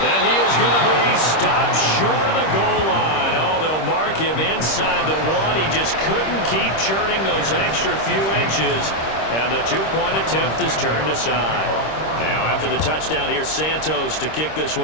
he is going to be stopped short of the goal line. Oh, they'll mark him inside the 1. He just couldn't keep churning those extra few inches. And the 2-point attempt is turned aside. Now after the touchdown, here's Santos to kick this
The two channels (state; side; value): late; right; 26 ms